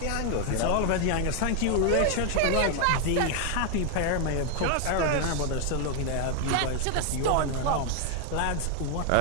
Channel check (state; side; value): different; both; correlation 0.00